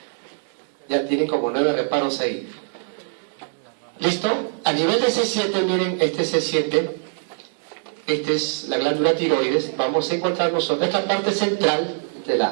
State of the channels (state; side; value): silent; left; 61 dB below the other